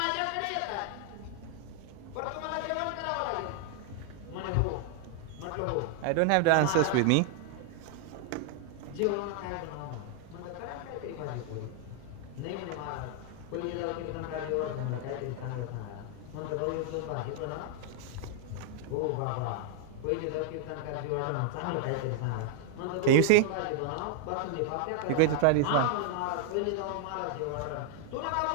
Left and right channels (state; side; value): different; both; correlation 0.00